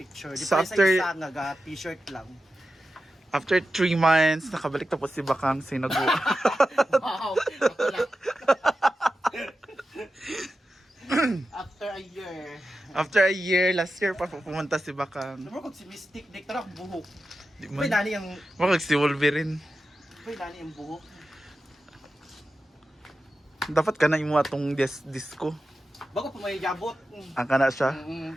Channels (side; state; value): both; normal; correlation 0.92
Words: Di so pa after- isa nga t-shirt lang. after 3 months, nakabalik tapos si Bakang sinagu. Wow! Ako lang. After a year. After a year, last year pa pumunta si Bakang. Naman kung si Mystic, di ka buhok. Di Uy, man. nani ang... Wag si Wolverine. Uy, nani ang buhok. Dapat ka na imo atong disco. Bago pa may jabot. Ang kana siya.